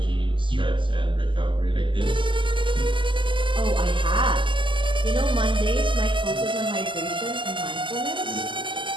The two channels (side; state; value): left; late; 0.24 ms